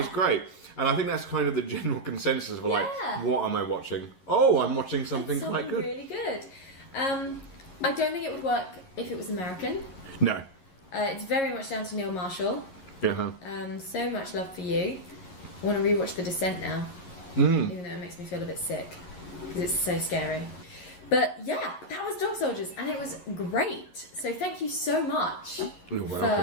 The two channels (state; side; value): late; right; 11 ms